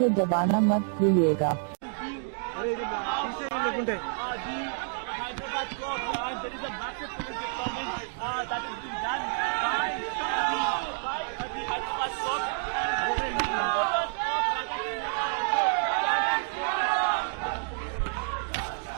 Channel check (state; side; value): silent; left; 59 dB below the other